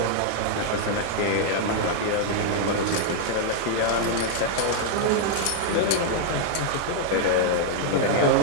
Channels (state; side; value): different; both; correlation -0.01